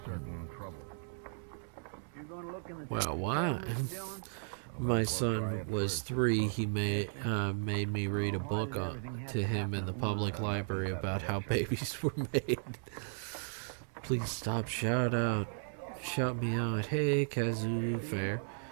certain trouble. Well, why? My son was 3. He made me read a book to him in the public library about how babies were made. Please stop. Shout me out. Hey, Kazoo, fair.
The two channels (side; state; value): left; silent; 54 dB below the other